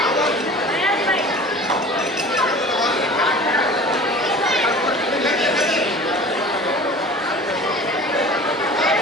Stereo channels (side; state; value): both; normal; correlation 0.40